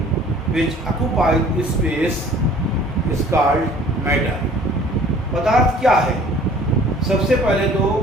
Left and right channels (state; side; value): normal; both; correlation 0.51